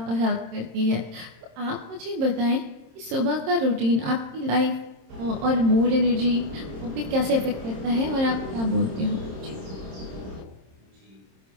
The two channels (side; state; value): left; late; 26 ms